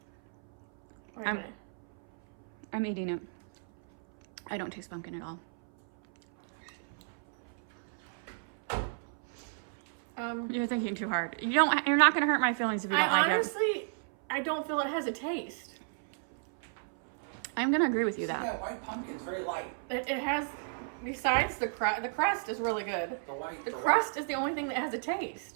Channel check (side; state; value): left; silent; 56 dB below the other